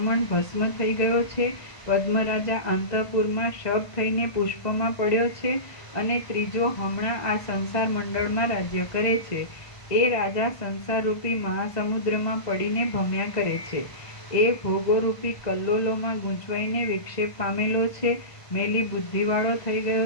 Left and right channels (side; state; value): right; late; 1.5 ms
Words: ભસ્મ થઈ ગયો છે, પદ્મરાજા અંતઃપુરમાં શબ થઈને પુષ્પમાં પડ્યો છે અને ત્રીજો હમણાં આ સંસાર મંડળમાં રાજ્ય કરે છે. એ રાજા સંસારરૂપી મહાસમુદ્રમાં પડીને ભમ્યા કરે છે. એ ભોગોરૂપી કલ્લોલોમાં ગૂંચવાઈને વિક્ષેપ પામેલો છે, મેલી બુદ્ધિવાળો થઈ